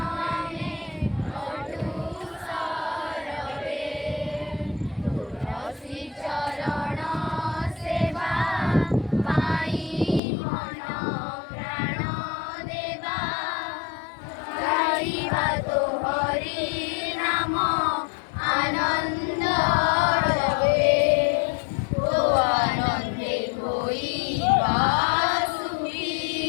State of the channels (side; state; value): right; drops out; at 10.2 s